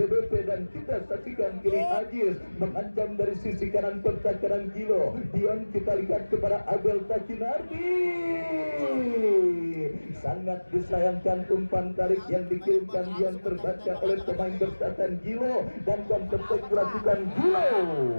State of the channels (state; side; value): inverted; both; correlation -1.00